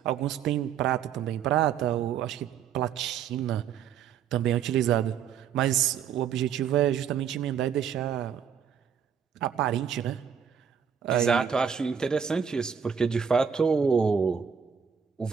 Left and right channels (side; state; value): left; quieter; 7.7 dB